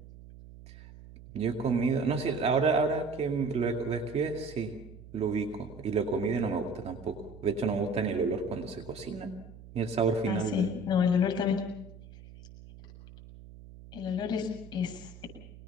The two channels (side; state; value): right; noise; hum, 17 dB below the sound